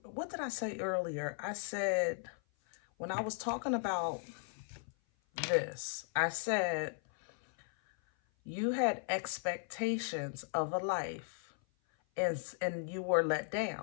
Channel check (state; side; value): silent; right; 53 dB below the other